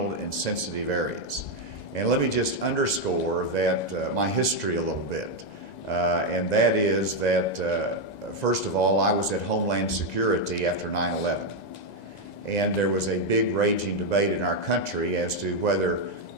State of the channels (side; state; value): right; late; 2.0 ms